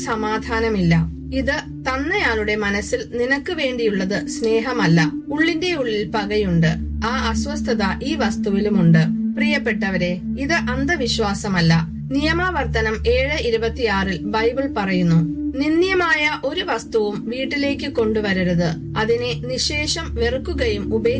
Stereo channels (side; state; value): both; identical; correlation 1.00